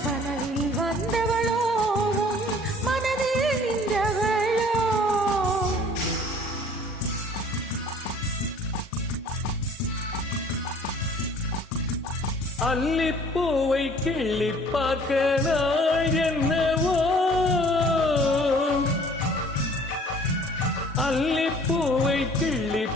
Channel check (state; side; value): normal; both; correlation 0.53